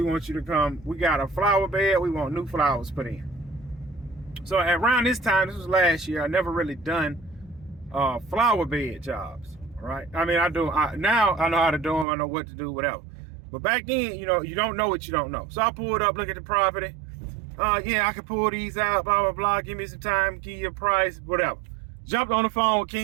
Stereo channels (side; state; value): left; drops out; at 12.1 s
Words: want you to come. We got a flower bed. We want new flowers put in. So around this time, this was last year, I never really done flower bed jobs, right? I mean, now I know how to do them. I know what to do, whatever. But back then, you don't know what you don't know. So I pulled up, look at the property. Yeah, I can pull these out, blah, blah, blah. Give me some time, give you a price, whatever. Jumped on the phone with